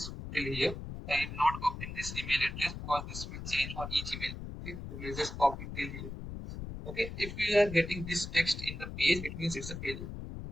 till here. I am not copying this email address because this will change for each email. Okay, so let's just copy till here. Okay, if we are getting this text in the page, it means it's a failure.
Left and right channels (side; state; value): left; noise; rumble, 8 dB below the sound